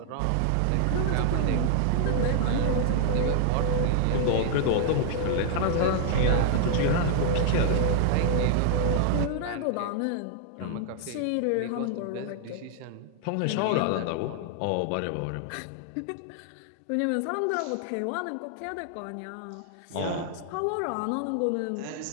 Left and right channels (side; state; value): both; different; correlation -0.01